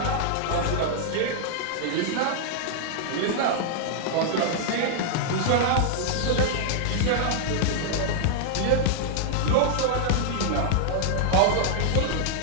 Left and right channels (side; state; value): both; different; correlation -0.01